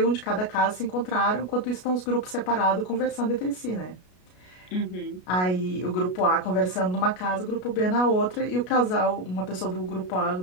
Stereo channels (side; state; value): right; late; 33 ms